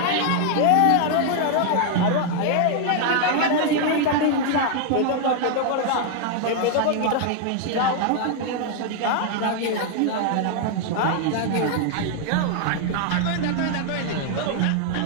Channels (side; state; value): both; different; correlation 0.00